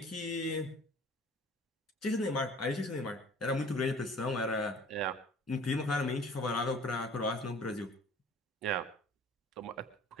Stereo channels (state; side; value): normal; both; correlation 0.49